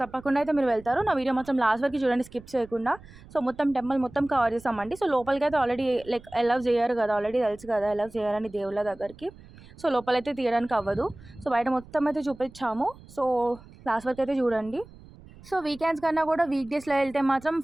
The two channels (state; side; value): noise; right; rumble, 21 dB below the sound